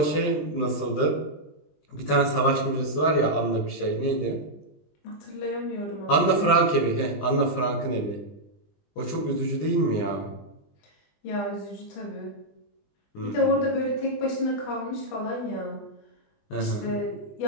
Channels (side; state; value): right; late; 20 ms